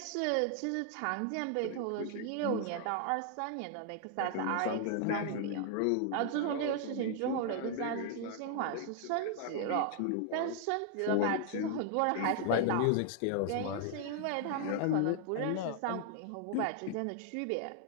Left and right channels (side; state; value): both; different; correlation 0.00